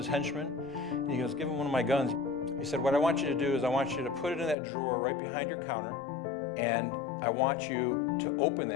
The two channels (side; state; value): right; drops out; at 4.5 s